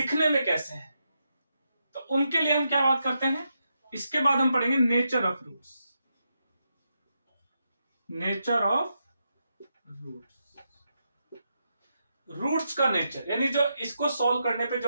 में कैसे हैं, तो उनके लिए हम क्या बात करते हैं, इसके बाद हम पढ़ेंगे nature of roots. Nature of roots. Roots का नेचर, यानी जो इसको सॉल्व करने पे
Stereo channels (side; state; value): both; inverted; correlation -0.84